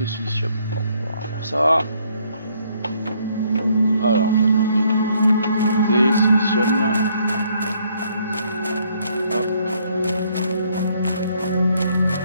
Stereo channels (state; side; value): inverted; both; correlation -0.67